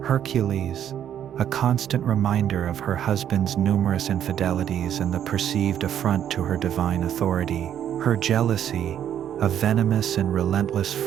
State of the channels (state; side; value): quieter; left; 10.0 dB